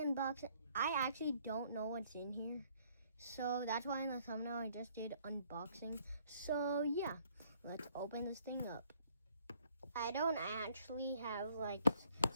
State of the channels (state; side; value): inverted; both; correlation -0.63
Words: I actually don't know what's in here, so that's why in the thumbnail I just did unboxing. So yeah, let's open this thing up. I don't actually have like